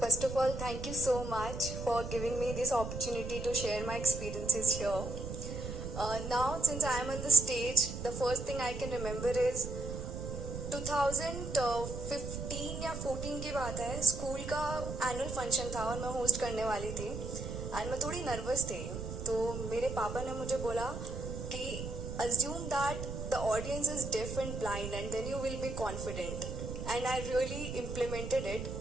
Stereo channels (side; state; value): right; noise; rumble, 6 dB below the sound